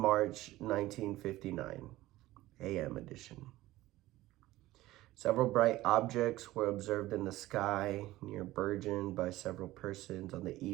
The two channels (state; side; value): quieter; left; 16.9 dB